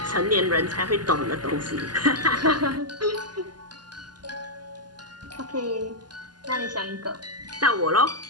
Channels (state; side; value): late; left; 0.70 ms